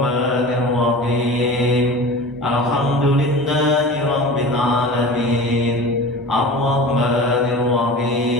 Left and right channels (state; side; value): normal; both; correlation 0.35